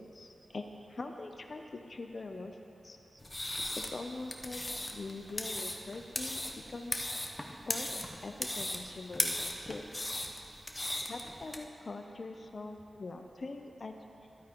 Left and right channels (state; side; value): normal; both; correlation 0.97